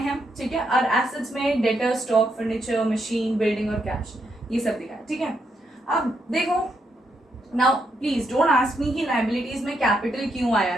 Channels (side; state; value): both; normal; correlation 0.79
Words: ठीक है। और एसेट्स में debtor, stock, furniture, machine, building और कैश, ये सब दिखाया, ठीक है। अब देखो, now please don't ask me कि लायबिलिटीज में कैपिटल क्यों आया